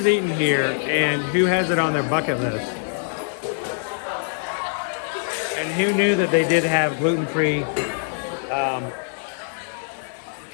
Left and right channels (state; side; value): silent; right; 63 dB below the other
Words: eaten here and who has it on their bucket list? And who knew that they did have gluten-free